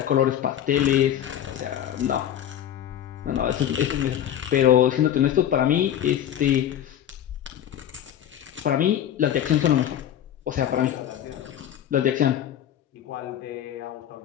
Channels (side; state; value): right; quieter; 10.6 dB